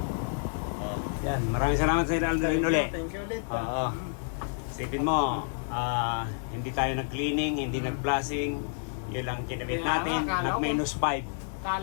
Yan, maraming salamat sa Aldrin ulit. Thank you ulit. Oo. Isipin mo, hindi tayo nag-cleaning, hindi nag-blasting. Yun lang kinabit Kaya natin, nga, akala ko- nag-minus 5.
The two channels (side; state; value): right; silent; 58 dB below the other